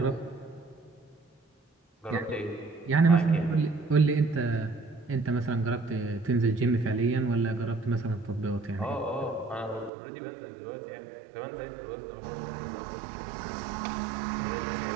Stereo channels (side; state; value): left; drops out; at 9.9 s